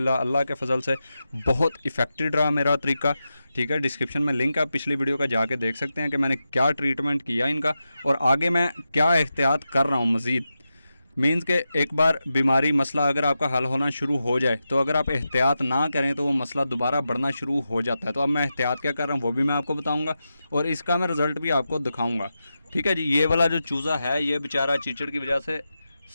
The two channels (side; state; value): both; inverted; correlation -0.90